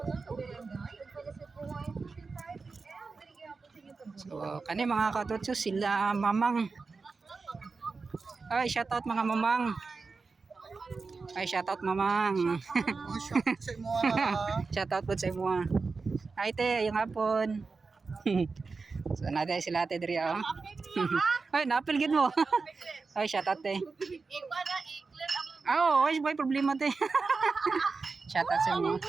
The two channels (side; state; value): left; quieter; 4.4 dB